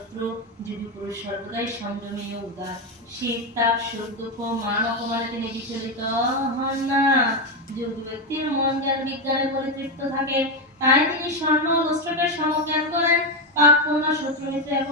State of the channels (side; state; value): both; normal; correlation 0.08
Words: যোগী পুরুষ সর্বদাই সংযমী ও উদার। শীত তাপ সুখ দুঃখ মান অপমানে তিনি বিচলিত হন না। যোগী ব্যক্তির মন জ্ঞান বিজ্ঞানে পরিতৃপ্ত থাকে, তাই তিনি স্বর্ণ ও লুস্ত্রকে সমজ্ঞান করেন। পাপ পূর্ণ শত্রু মিত্র